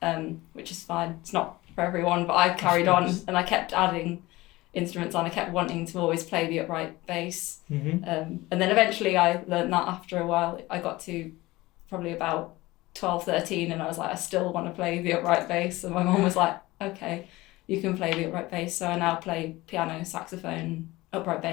which is fine. It's not for everyone, but I carried on and I kept adding instruments on. I kept wanting to always play the upright bass. Mm-hmm. And then eventually I learned that after a while. I got to probably about 12, 13 and I was like, I still want to play the upright bass. And my mum was like, okay, you can play the upright bass. So I now play piano, saxophone, upright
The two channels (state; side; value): quieter; right; 19.6 dB